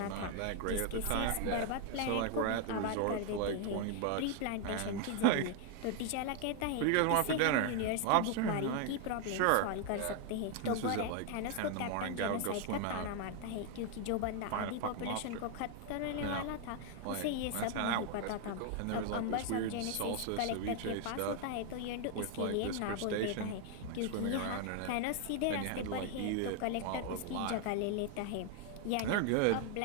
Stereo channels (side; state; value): both; different; correlation 0.00